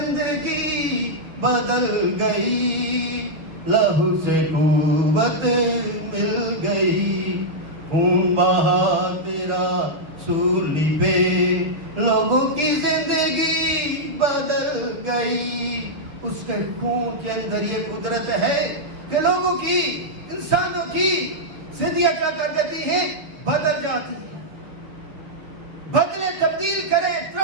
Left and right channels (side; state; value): left; late; 6.3 ms